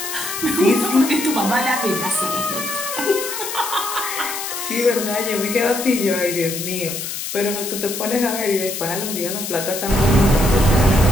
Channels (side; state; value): left; noise; hiss, 6 dB below the sound